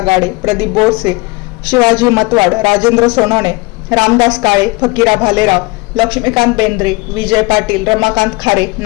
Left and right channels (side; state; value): right; quieter; 25.1 dB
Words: गाडे, प्रदीप बोरसे, शिवाजी मतवाड, राजेंद्र सोनवणे, रामदास काळे, फकीरा भालेराव, लक्ष्मीकांत बेंद्रे, विजय पाटील, रमाकांत खारे,